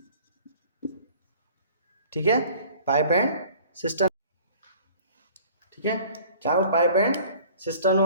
ठीक है, पाइप एंड सिस्टम, ठीक है, चाहे वो पाइप एंड सिस्टम हो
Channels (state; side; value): inverted; both; correlation -0.50